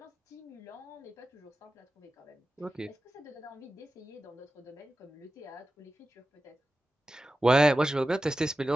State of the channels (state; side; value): normal; both; correlation 0.94